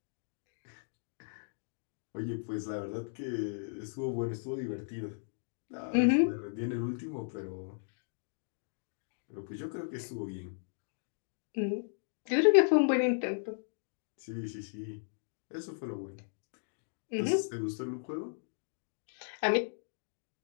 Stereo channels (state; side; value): silent; right; digital silence